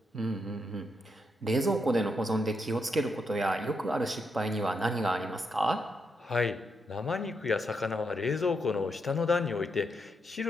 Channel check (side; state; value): both; normal; correlation 0.81